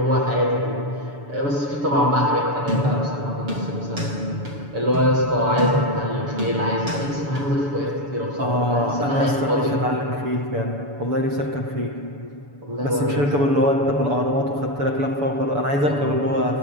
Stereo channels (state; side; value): late; left; 7.0 ms